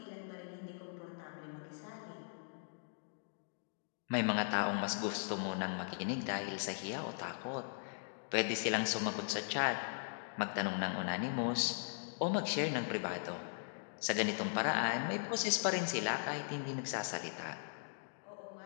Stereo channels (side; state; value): right; silent; digital silence